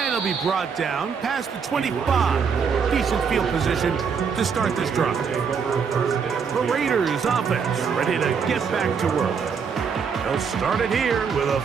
it'll be brought down past the 25. Decent field position to start this drive. The Raiders offense ready to get back to work. They'll start it here with a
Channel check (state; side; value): quieter; left; 6.2 dB